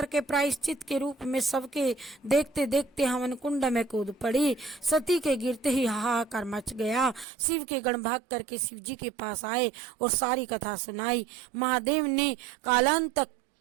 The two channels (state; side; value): drops out; left; at 7.2 s